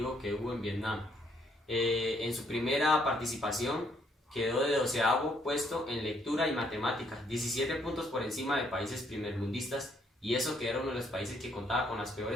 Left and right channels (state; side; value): normal; both; correlation 0.70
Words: que hubo en Vietnam. En su primera participación quedó de 12º puesto en lectura y matemáticas, 17 puntos por encima de países primermundistas, y eso que era uno de los países que contaba con las